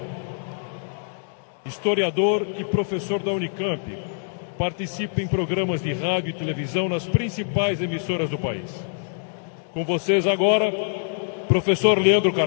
Historiador e professor da Unicamp, participa em programas de rádio e televisão nas principais emissoras do país. Com vocês agora, professor Leandro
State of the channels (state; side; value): silent; right; digital silence